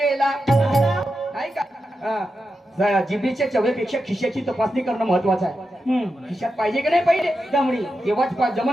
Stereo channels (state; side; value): normal; both; correlation 0.89